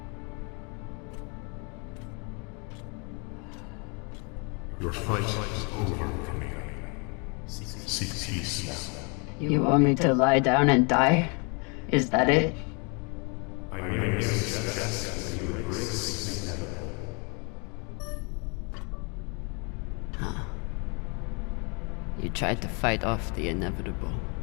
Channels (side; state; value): right; quieter; 33.7 dB